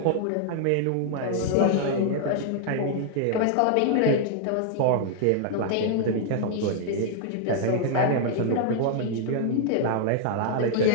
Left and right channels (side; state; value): both; different; correlation -0.01